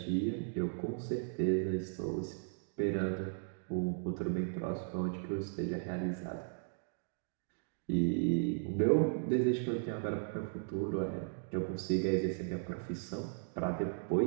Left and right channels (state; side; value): silent; left; digital silence